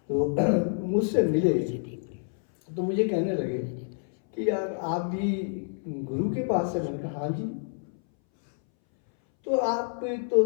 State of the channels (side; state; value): right; silent; 59 dB below the other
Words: तो मुझसे मिले तो मुझे कहने लगे कि यार आप भी गुरु के पास से। मैंने कहा हाँ जी। तो आप तो